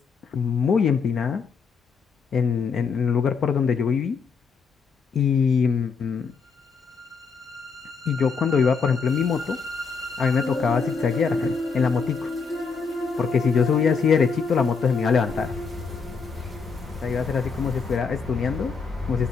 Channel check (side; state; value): right; quieter; 5.3 dB